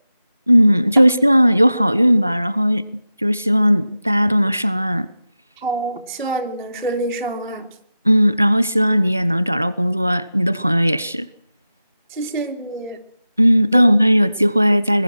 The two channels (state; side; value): inverted; both; correlation -0.94